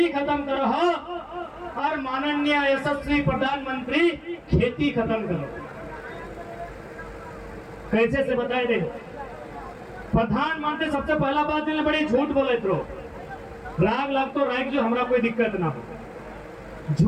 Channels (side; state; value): both; identical; correlation 1.00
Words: खत्म करो, और माननीय यशस्वी प्रधानमंत्री खेती खत्म करो। कैसे से बताए दे? प्रधानमंत्री सबसे पहला बात इन्हें बड़ी झूठ बोले तो राग लग तो राग जो हमरा कोई दिक्कत ना हो।